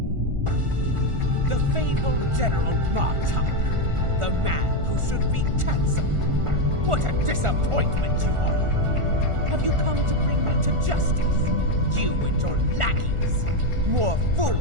The fabled General Martok, the man who should be cancelled. What a disappointment you are! Have you come to bring me to justice? You and your lackeys? More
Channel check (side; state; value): left; late; 1.4 ms